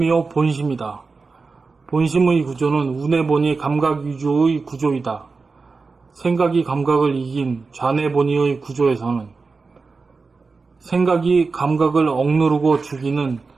본심이다. 본심의 구조는 운해본이 감각 위주의 구조이다. 생각이 감각을 이긴 좌뇌본이의 구조에서는 생각이 감각을 억누르고 죽이는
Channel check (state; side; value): quieter; left; 4.3 dB